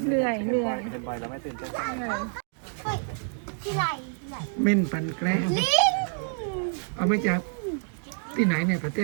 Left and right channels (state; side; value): silent; left; digital silence